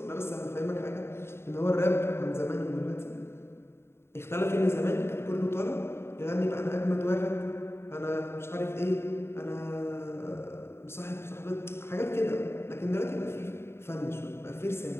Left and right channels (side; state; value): right; late; 0.12 ms